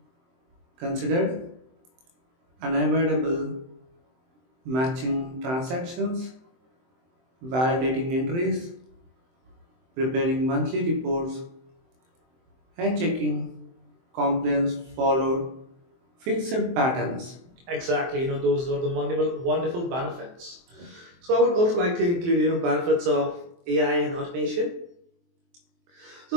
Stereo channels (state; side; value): late; left; 23 ms